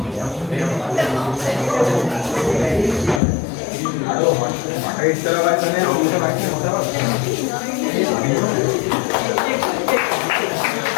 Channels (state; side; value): drops out; right; at 3.2 s